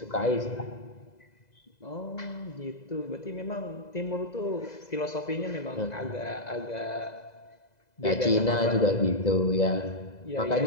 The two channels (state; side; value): late; right; 2.0 ms